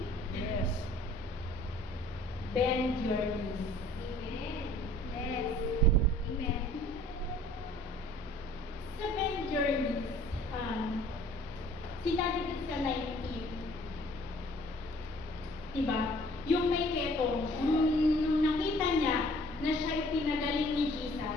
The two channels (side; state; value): both; normal; correlation 0.54